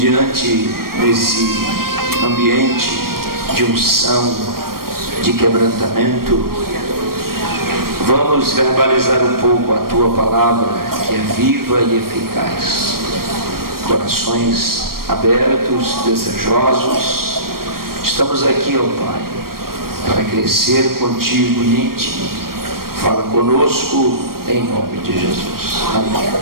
esse ambiente de unção, de quebrantamento, vamos verbalizar um pouco a tua palavra, que é viva e eficaz. Corações abertos, desejosos, estamos aqui, ó Pai, para crescer contigo e em ti. Fala conosco em nome de Jesus. Amém.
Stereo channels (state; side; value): late; left; 0.93 ms